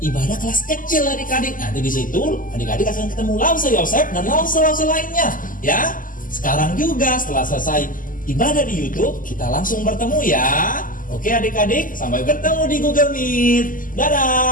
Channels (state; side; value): late; right; 0.39 ms